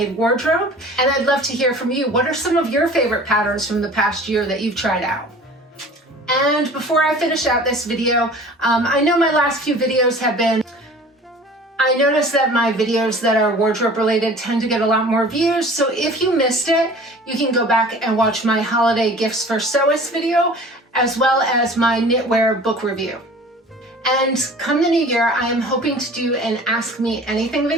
wardrobe, and I'd love to hear from you. What are some of your favorite patterns from the past year that you've tried out? And before I finish out this video, I know my last few videos have been, I noticed that my videos that are wardrobe related tend to get a lot more views, so if you missed it, you can go back and watch my holiday gifts for sewist video, as well as my knitwear book review. And come the new year, I am hoping to do an Ask Me Anything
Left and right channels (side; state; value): both; normal; correlation 0.44